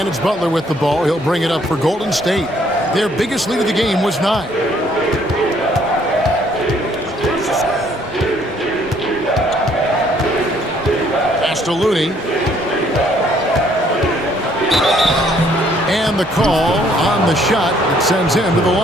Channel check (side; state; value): both; normal; correlation 0.64